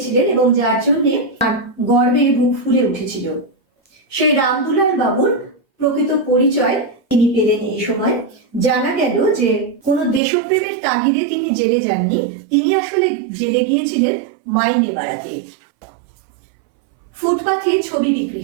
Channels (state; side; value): drops out; left; at 10.2 s